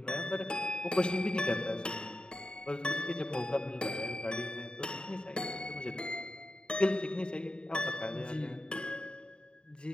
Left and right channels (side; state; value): right; late; 0.050 ms